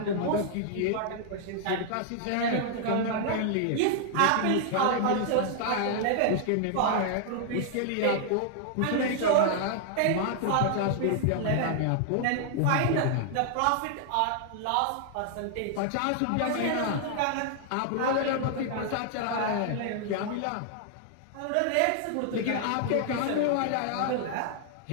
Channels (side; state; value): both; different; correlation 0.00